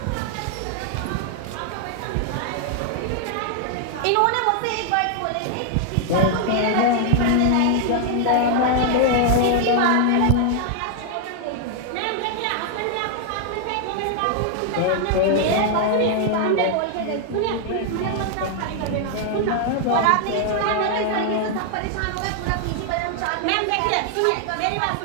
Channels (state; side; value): different; both; correlation 0.00